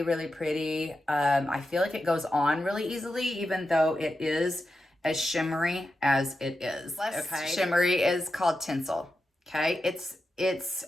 really pretty. I feel like it goes on really easily, even though it is as shimmery as it is. Okay. Shimmery is called Tinsel. Okay. It's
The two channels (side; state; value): both; normal; correlation 0.90